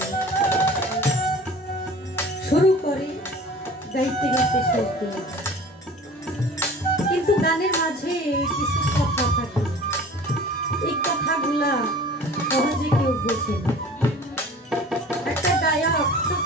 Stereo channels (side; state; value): both; normal; correlation 0.43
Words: শুরু করে গাইতে গাইতে শেষ করে, কিন্তু গানের মাঝে কিছু কথা থাকে, এই কথাগুলা সহজে কেউ বোঝে না। একটা গায়ক খুব